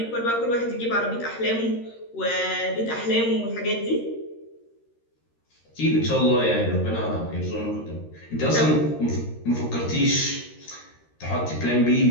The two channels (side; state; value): right; late; 13 ms